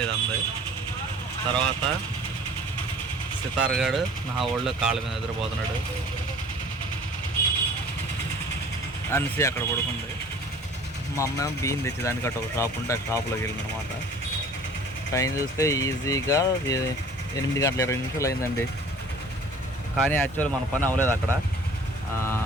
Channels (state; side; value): normal; both; correlation 0.48